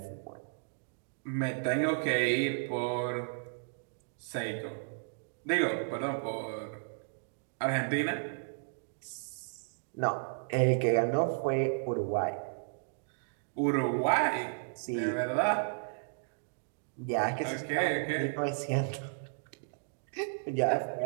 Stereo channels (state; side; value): silent; left; digital silence